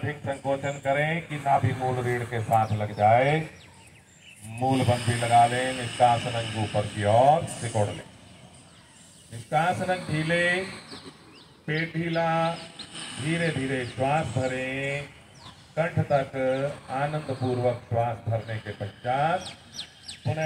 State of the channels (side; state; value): both; identical; correlation 1.00